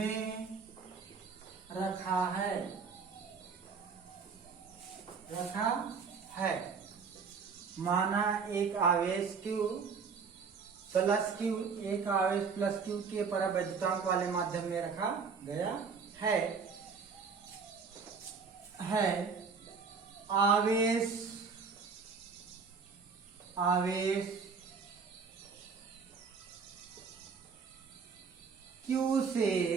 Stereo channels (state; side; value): quieter; left; 5.4 dB